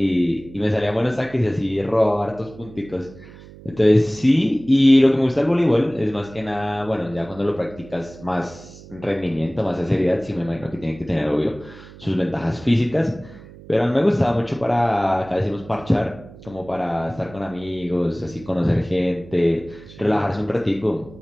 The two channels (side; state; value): right; noise; hum, 19 dB below the sound